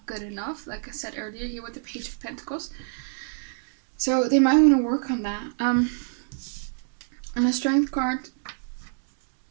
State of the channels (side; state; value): left; silent; digital silence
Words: good enough, like I said earlier here with the Page of Pentacles. So they might want to work on that. And the Strength card